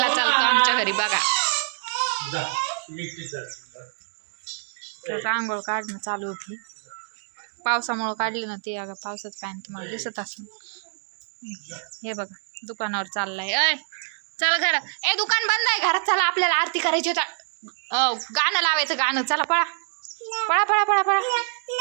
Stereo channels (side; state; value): left; silent; digital silence